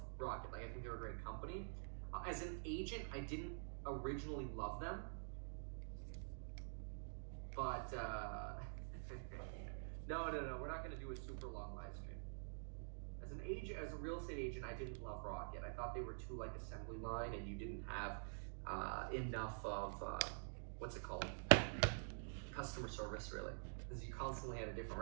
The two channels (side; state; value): left; silent; digital silence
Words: Rocket. Like, I think they're a great company. As an agent, I didn't originally love them, but no, we're not going to do a super long live stream. As an agent, as a real estate agent, I didn't love Rocket. I thought they were too like assembly line, and you didn't have enough of what's it called, customer service, really, because you constantly had a different